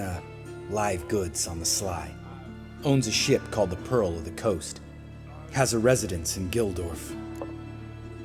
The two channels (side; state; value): both; identical; correlation 1.00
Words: live goods on the sly. Owns a ship called the Pearl of the Coast. Has a residence in Gildorf.